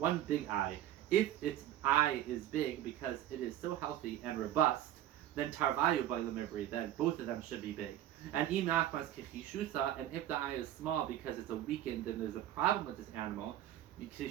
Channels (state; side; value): quieter; left; 12.5 dB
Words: big eye, if its eye is big because it is so healthy and robust, then tarvayu by lemivri, then both of them should be big. And imachmas kichishusa, and if the eye is small because it's a weakened and there's a problem with this animal,